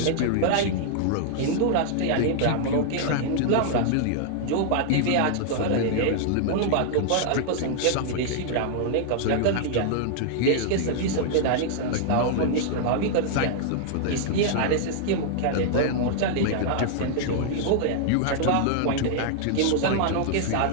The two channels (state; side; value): different; both; correlation -0.01